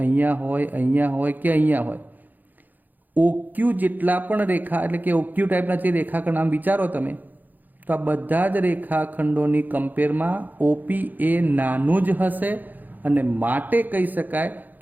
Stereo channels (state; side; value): late; left; 0.085 ms